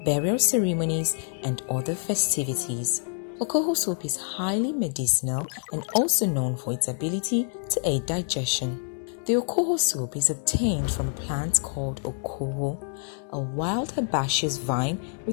burial ceremonies, and other festivities. Okoho soup is highly medicinal and also known for its ability to aid digestion. The Okoho soup is obtained from a plant called Okoho, a wild herbaceous vine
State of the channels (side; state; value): right; silent; 60 dB below the other